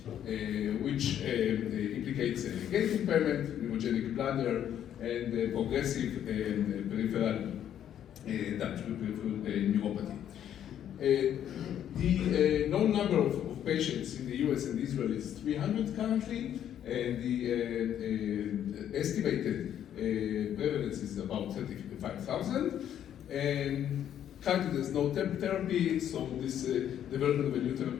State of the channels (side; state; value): right; quieter; 10.2 dB